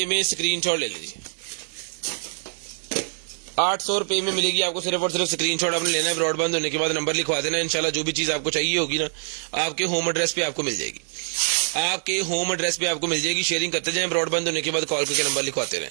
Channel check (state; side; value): silent; left; 62 dB below the other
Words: में स्क्रीनशॉट ले लीजिए। 800 रुपये में मिलेगी आपको, सिर्फ और सिर्फ स्क्रीनशॉट आपने लेना है। ब्रॉडबैंड होने के बाद नंबर लिखवा देना, इंशाल्लाह जो भी चीज आपको चाहिए होगी ना, आपके होम एड्रेस पे आपको मिल जाएगी, आपके होम एड्रेस पे आपको मिल जाएगी। शेयरिंग करते जाएं, ब्रॉडबैंड होने के बाद कॉल करके नंबर लिखवाते रहें।